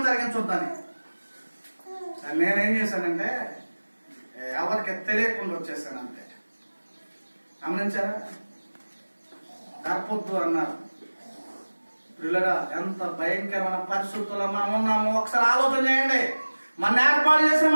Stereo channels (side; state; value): both; inverted; correlation -1.00